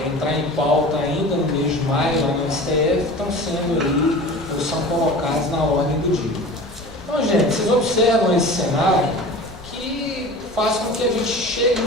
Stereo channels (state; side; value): normal; both; correlation 0.38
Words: entrar em pauta ainda no mês de maio lá no STF, estão sendo aí, ou são colocados na ordem do dia. Então, gente, vocês observam esse cenário que faz com que a gente chegue